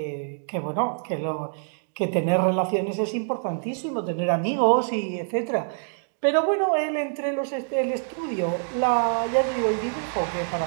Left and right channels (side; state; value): left; silent; digital silence